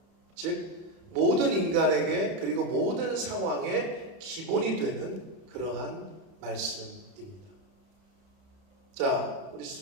즉 모든 인간에게 그리고 모든 상황에 기본이 되는 그러한 말씀입니다. 자, 우리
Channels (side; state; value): left; late; 31 ms